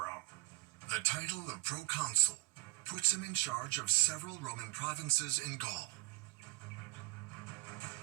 The title of proconsul puts him in charge of several Roman provinces in Gaul.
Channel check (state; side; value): quieter; left; 22.4 dB